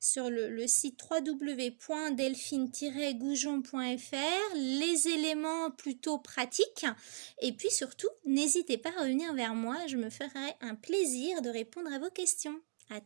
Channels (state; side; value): silent; left; digital silence